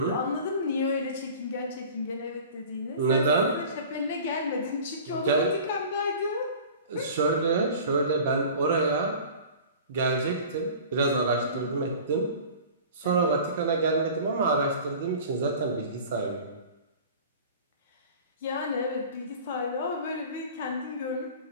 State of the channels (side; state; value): both; inverted; correlation -0.41